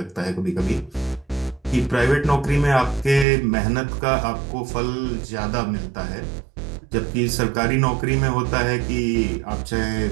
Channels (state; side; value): drops out; left; at 3.2 s